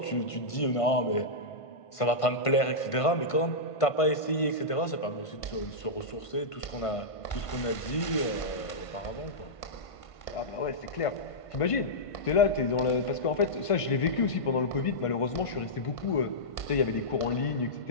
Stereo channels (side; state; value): right; late; 1.5 ms